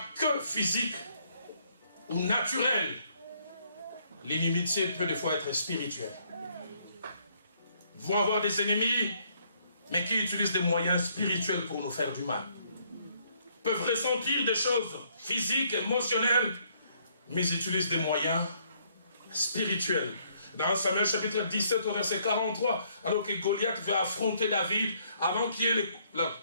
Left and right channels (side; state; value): both; inverted; correlation -0.68